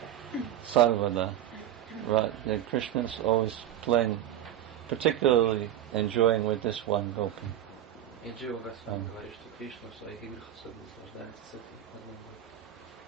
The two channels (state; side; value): quieter; left; 11.6 dB